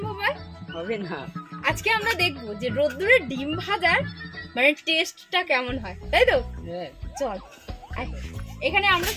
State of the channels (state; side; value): identical; both; correlation 1.00